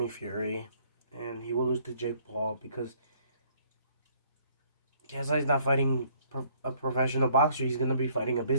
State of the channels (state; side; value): inverted; both; correlation -0.62